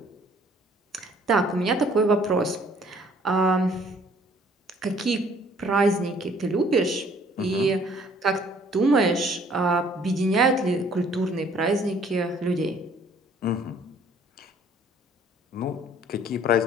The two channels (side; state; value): both; normal; correlation 0.58